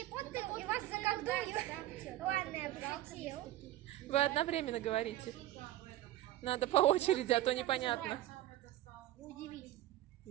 Поттер и вас заколдую. Ладно, я пошутил. Вы одновременно говорите. Надо по очереди, а то непонятно. Удивительно.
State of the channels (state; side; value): quieter; left; 14.8 dB